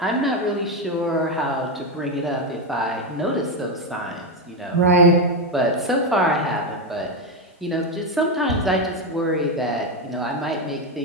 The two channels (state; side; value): normal; both; correlation 0.08